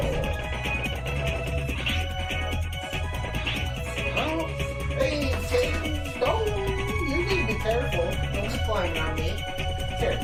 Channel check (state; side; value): identical; both; correlation 1.00